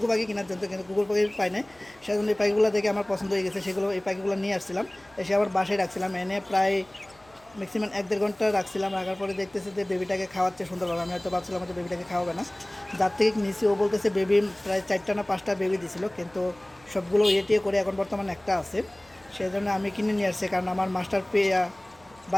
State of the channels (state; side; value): noise; left; hum, 29 dB below the sound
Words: পাখি কেনার জন্য, কিন্তু গুগল পাখি পাই নাই। সেজন্য এই পাখিগুলো দেখে আমার পছন্দ হয়ে গেছে, সেগুলো এই পাখিগুলো নিয়ে আসছিলাম। এসে আবার বাসায় রাখছিলাম, এনে প্রায় ম্যাক্সিমাম 1-1.5 ঘন্টা রাখছিলাম। রাখার পরে দেখতেছে যে বেবিটাকে খাওয়াচ্ছে সুন্দরভাবে। আমি হয়তো ভাবছিলাম যে বেবিটাকে খাওয়াবে না, যার থেকে নিচে ও বলতেছে বেবি প্রায় 4টা না 5টা বেবি দিছিল, কিন্তু সবগুলো ইয়ে করে এখন বর্তমানে একটা আছে। সেই জন্য আমি কিনে নিয়ে আসছি, কারণ আমার মাস্টার